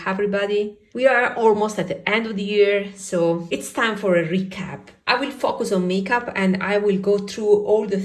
everybody. We are almost at the end of the year, so it's time for a recap. I will focus on makeup and I will go through all the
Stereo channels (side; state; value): both; identical; correlation 1.00